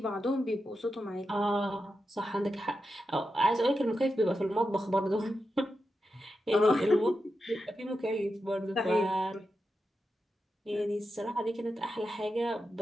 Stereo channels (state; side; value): normal; both; correlation 0.89